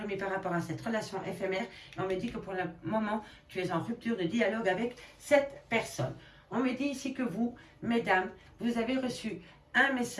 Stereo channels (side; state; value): both; identical; correlation 1.00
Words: par rapport à cette relation éphémère. Et on me dit que pour le moment, tu es en rupture de dialogue avec cette personne. On me dit ici que vous, mesdames, vous avez reçu un